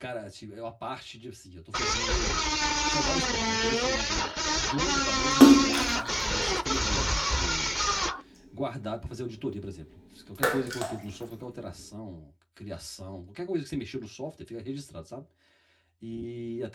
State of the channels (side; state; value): both; identical; correlation 1.00